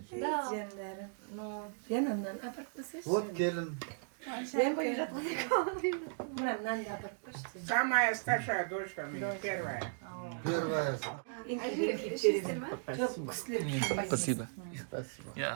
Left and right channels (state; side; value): silent; left; digital silence